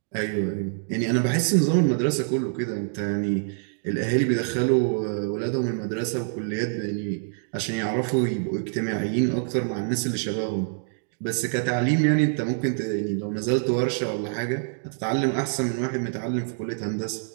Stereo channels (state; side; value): silent; left; digital silence